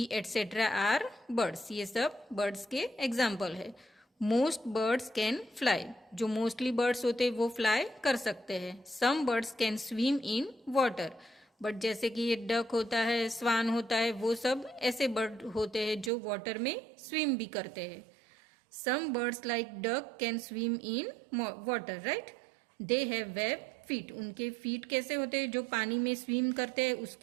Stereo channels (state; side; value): drops out; left; at 16.1 s